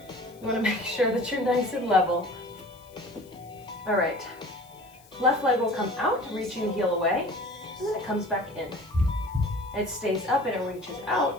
want to make sure that you're nice and level. All right, left leg will come out, reaching the heel away, and then it comes back in. It stays up and it reaches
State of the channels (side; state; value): left; noise; hiss, 27 dB below the sound